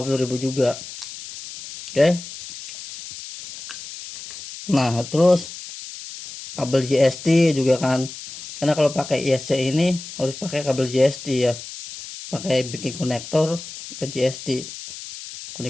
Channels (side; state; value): left; noise; hiss, 12 dB below the sound